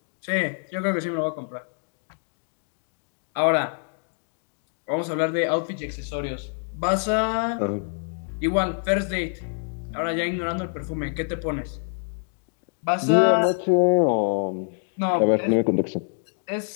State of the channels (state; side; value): silent; right; 61 dB below the other